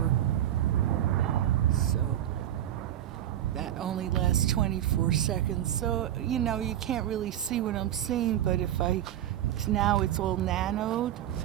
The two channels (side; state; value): left; quieter; 11.8 dB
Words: So that only lasts 24 seconds. So, you can't really see what I'm seeing, but now it's all nanoed,